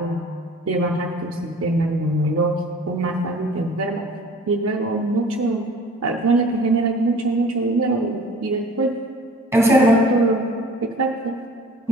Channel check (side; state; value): both; normal; correlation 0.46